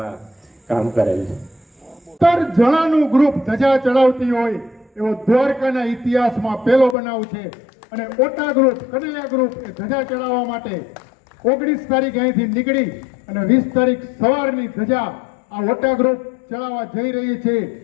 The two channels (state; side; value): drops out; right; at 7.0 s